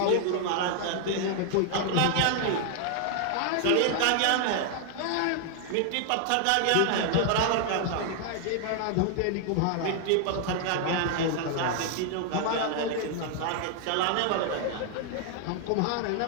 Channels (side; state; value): both; different; correlation 0.00